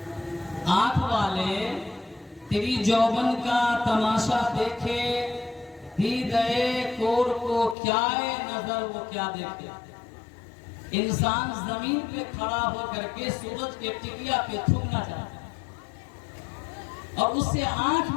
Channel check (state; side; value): drops out; right; at 7.8 s